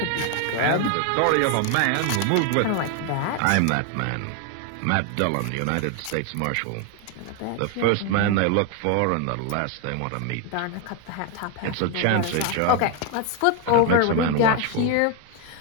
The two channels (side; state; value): both; different; correlation 0.01